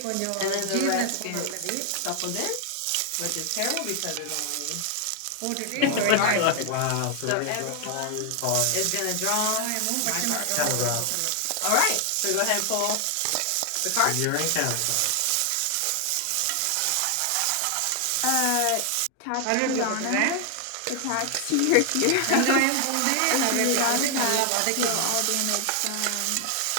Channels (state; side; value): different; both; correlation 0.00